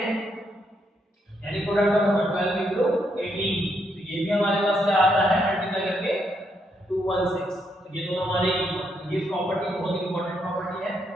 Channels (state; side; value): normal; both; correlation 0.77